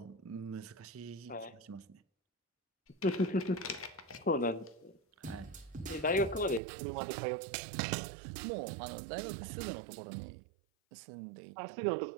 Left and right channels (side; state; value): left; drops out; at 6.6 s